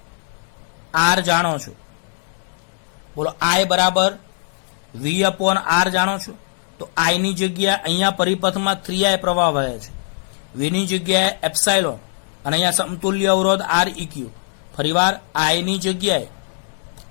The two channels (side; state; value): right; silent; digital silence